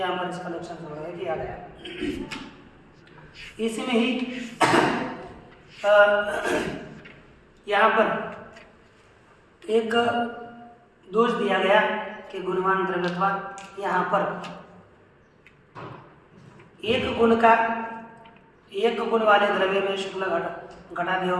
पर इसका लक्षण संग्रह किया गया। इसी में ही यहाँ पर एक दोष दिया गया कि गुणवान द्रव्यत्वा। यहाँ पर एक गुण वाले द्रव्य में शुक्ल घटादियों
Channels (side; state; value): both; identical; correlation 1.00